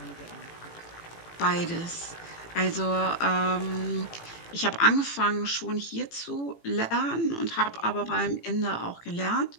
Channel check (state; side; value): late; right; 18 ms